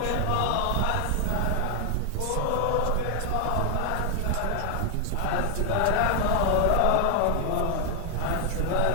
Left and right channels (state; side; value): different; both; correlation 0.00